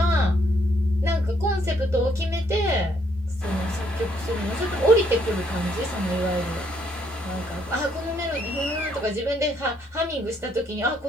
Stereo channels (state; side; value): normal; both; correlation 0.70